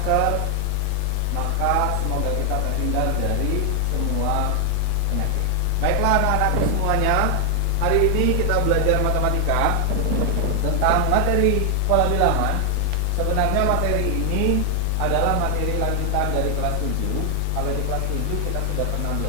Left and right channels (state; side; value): different; both; correlation 0.00